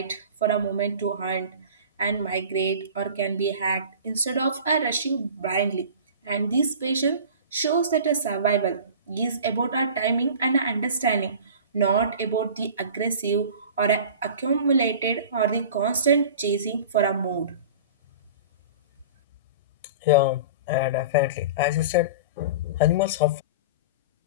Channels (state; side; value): inverted; both; correlation -0.38